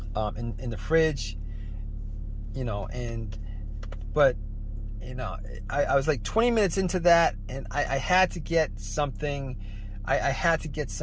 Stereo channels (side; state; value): both; identical; correlation 1.00